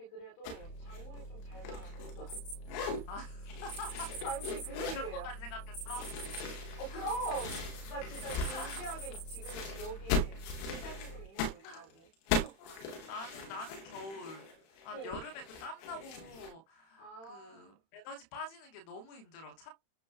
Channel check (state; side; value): late; right; 31 ms